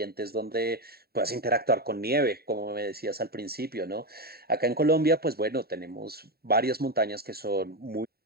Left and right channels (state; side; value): late; left; 0.45 ms